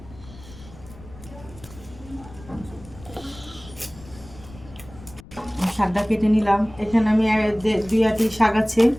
শাকটা কেটে নিলাম। এখানে আমি দুই আটি শাক আছে,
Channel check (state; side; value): noise; left; rumble, 19 dB below the sound